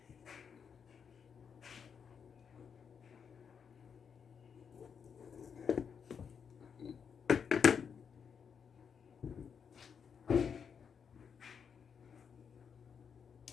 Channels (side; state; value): right; quieter; 6.8 dB